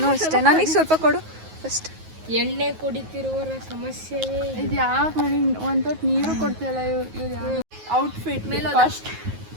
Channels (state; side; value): late; left; 9.4 ms